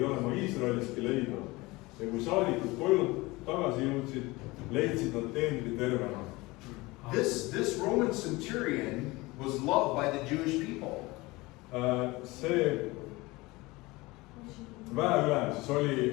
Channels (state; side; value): quieter; right; 22.0 dB